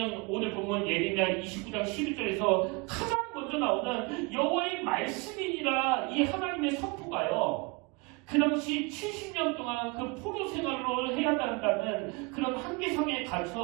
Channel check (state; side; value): quieter; left; 28.8 dB